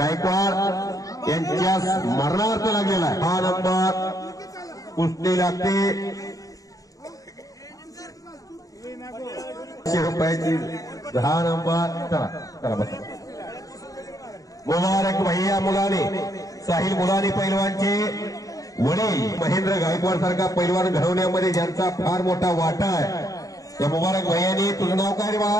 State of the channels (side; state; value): right; late; 0.17 ms